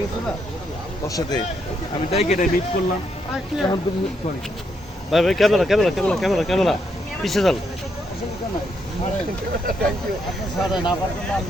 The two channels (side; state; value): both; normal; correlation 0.77